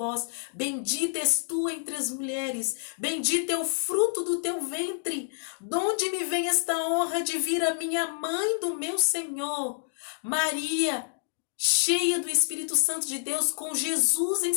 bendita és tu entre as mulheres, bendito é o fruto do teu ventre. Donde me vem esta honra de vir a minha mãe do meu Senhor? Maria, cheia do Espírito Santo de Deus, com Jesus em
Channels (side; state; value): right; silent; digital silence